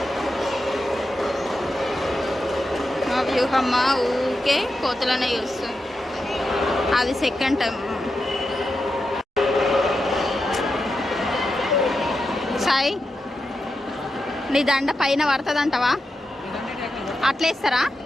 మా వ్యూహమ్మ ఊకే కోతులనే చూస్తుంది. అది సెకండ్ టైం. సాయి నీ దండ పైన పడుతుంది అంటవా? అట్లేస్తారా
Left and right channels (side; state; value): both; normal; correlation 0.88